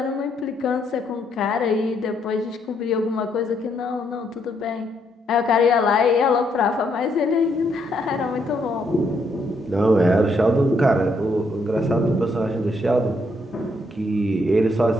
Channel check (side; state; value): both; normal; correlation 0.74